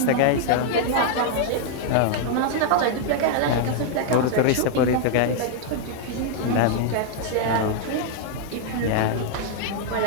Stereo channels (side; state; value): both; different; correlation 0.00